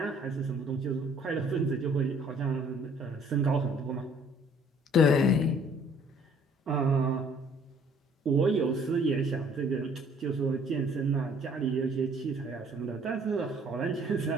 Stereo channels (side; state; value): both; normal; correlation 0.58